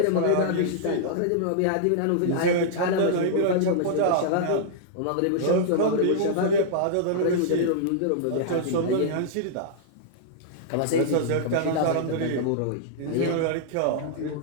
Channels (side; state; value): both; different; correlation -0.02